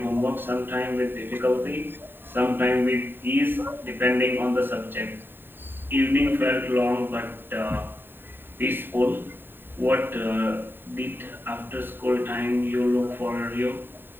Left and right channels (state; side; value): late; left; 0.097 ms